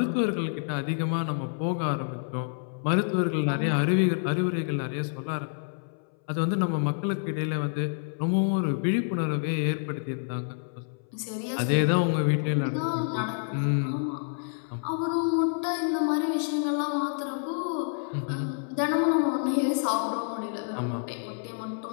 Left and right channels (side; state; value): right; silent; 59 dB below the other